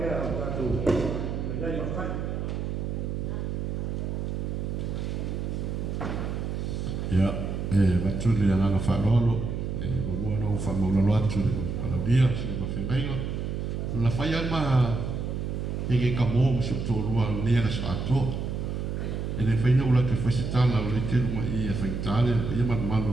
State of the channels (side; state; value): right; noise; hum, 3 dB below the sound